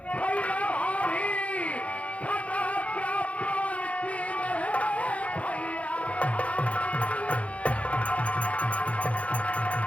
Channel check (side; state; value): right; late; 0.064 ms